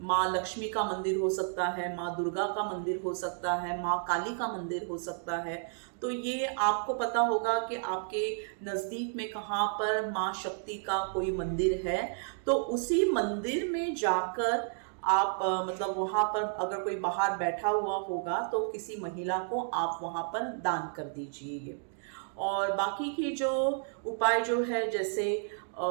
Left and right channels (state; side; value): silent; left; digital silence